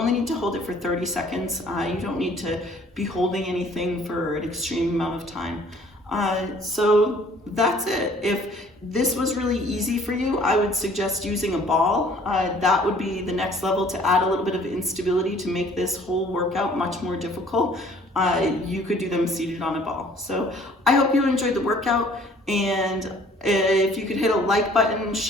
need to hold it for 30 seconds. You don't need to be holding anything for an extreme amount of time. So that's it. If this was really easy for you, I would suggest using a ball. That would be the next level to add a little bit of instability to make this whole workout much more difficult. You could do them seated on a ball. So I hope you enjoyed the workout, and if you could hit a like button,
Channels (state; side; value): normal; both; correlation 0.55